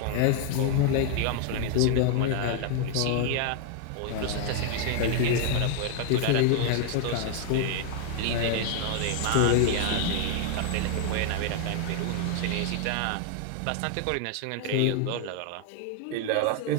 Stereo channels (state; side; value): different; both; correlation 0.00